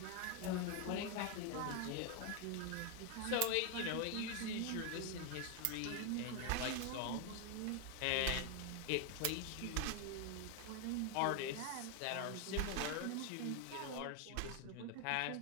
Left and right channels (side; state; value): both; different; correlation 0.01